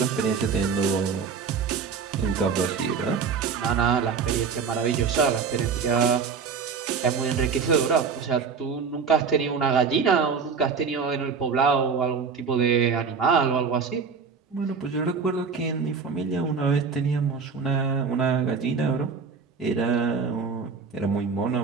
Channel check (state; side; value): quieter; left; 5.7 dB